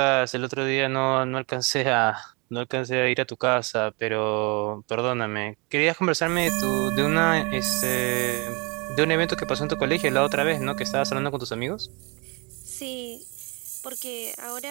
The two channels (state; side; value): quieter; left; 29.7 dB